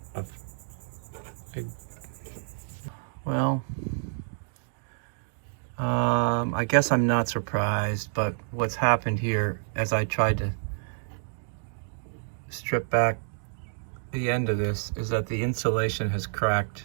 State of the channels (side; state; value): left; silent; digital silence